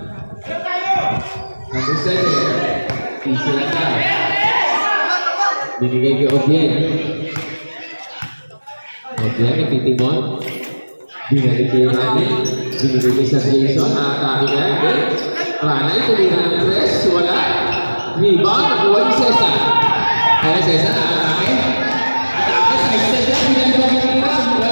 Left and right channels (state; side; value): inverted; both; correlation -1.00